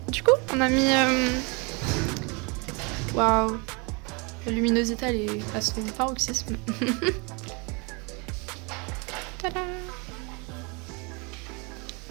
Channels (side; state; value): left; quieter; 30.6 dB